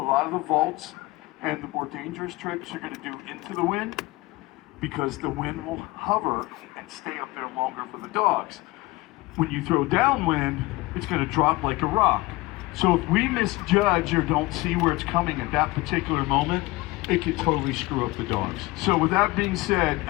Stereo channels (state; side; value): quieter; right; 21.0 dB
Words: lot of the vaults and the more dangerous trips you're going to do into the wind because the wind will hover and stay up there longer for the dogs. When you throw downwind, it's going to drop like a rock. So if we misjudge or don't see where it's coming at that particular moment, it could totally screw up the dogs. So with that being said,